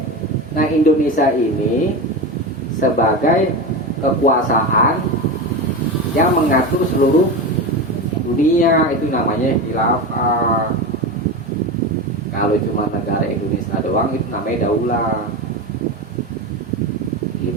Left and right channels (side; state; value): both; normal; correlation 0.21